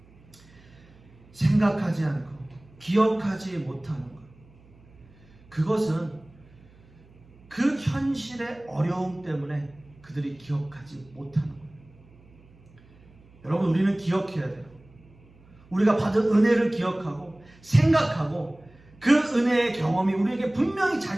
생각하지 않고 기억하지 못하는 것. 그것은 그 현실의 어려움 때문에 그들이 기억하지 못하는 거예요. 여러분, 우리는 기억해야 돼요. 우리가 받은 은혜를 기억하고 생각하고 그 은혜의 경험이 우리에게 분명히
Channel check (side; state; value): right; noise; hum, 26 dB below the sound